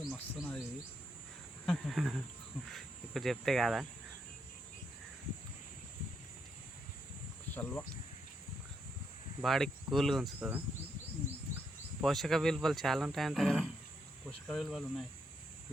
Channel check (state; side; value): normal; both; correlation 0.78